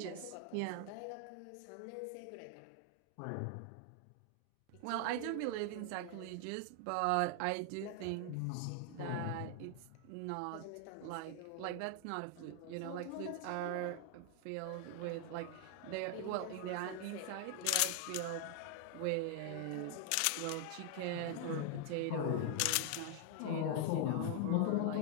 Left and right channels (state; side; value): different; both; correlation 0.00